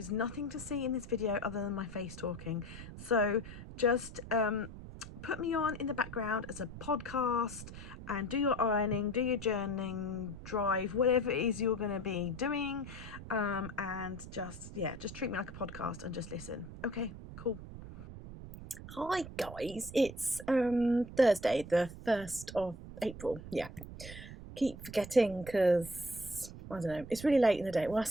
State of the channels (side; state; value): right; noise; rumble, 12 dB below the sound